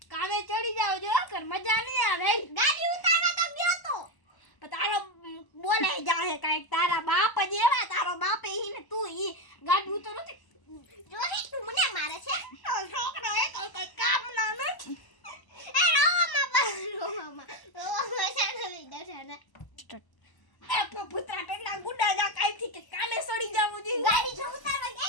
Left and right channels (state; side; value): late; right; 1.0 ms